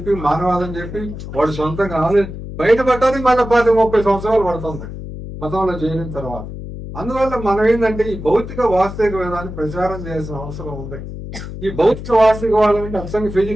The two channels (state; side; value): noise; left; hum, 10 dB below the sound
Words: మానవాదం చెప్పి, వాడు సొంతంగా బయటపడటానికి మళ్ళీ 30 సంవత్సరాలు పడుతుంది మతంలో చేరిన తర్వాత. అందువల్ల మనం ఏంటంటే ఈ భౌతిక వాస్తవిక వేదాన్ని ప్రచారం చేయాల్సిన అవసరం ఉంది. ఈ భౌతిక వాస్తవికవాదం అంటే అసలు